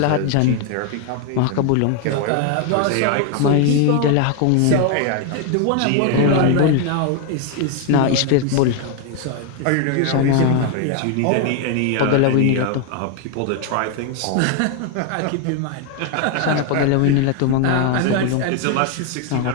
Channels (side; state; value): both; different; correlation 0.01